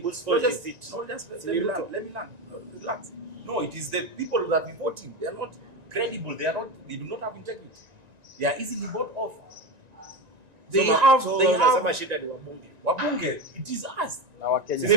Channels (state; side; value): late; left; 1.9 ms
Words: let me learn. Relax. No, it is the people that we voting. They are not credible. They do not have integrity. They are easily bought off. They have shida ni wabunge. Wabunge, it is us.